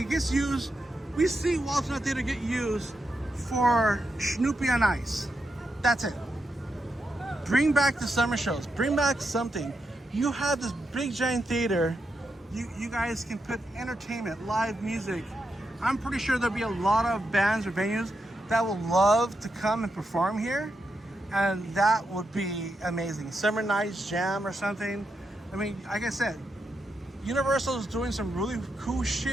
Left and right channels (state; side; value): normal; both; correlation 0.85